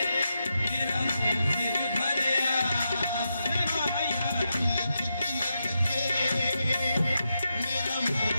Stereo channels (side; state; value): both; inverted; correlation -0.86